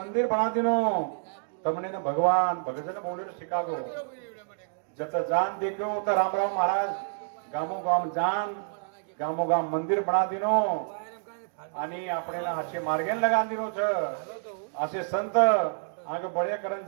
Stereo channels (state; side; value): silent; left; digital silence